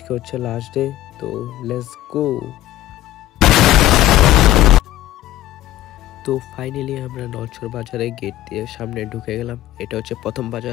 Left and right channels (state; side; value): quieter; right; 14.4 dB